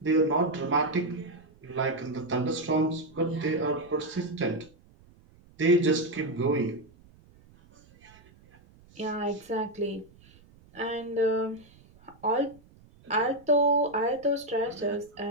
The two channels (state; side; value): noise; right; rumble, 27 dB below the sound